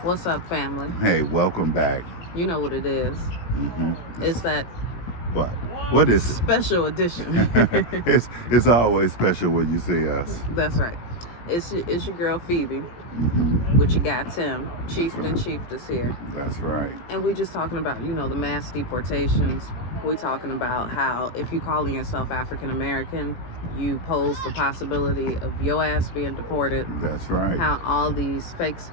What's up, family? Hey, welcome back. You know what it is. It's that What? What is it? special edition. It's always special when you see us. That's right. It's your girl Phoebe with your guy Tim. Chieftain Chieftess here. That's right. And we're just talking about, the mass deportations. We're talking about how if you're calling yourself African American, you pose the possibility of your ass being deported. That's right. How all these fake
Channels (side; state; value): right; late; 17 ms